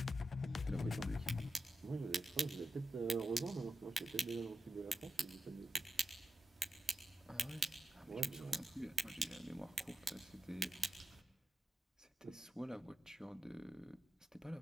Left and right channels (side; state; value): both; normal; correlation 0.89